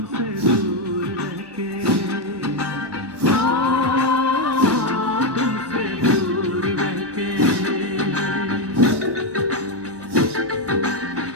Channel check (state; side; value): late; left; 1.1 ms